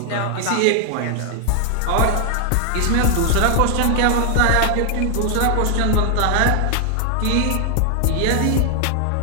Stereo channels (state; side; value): different; both; correlation 0.00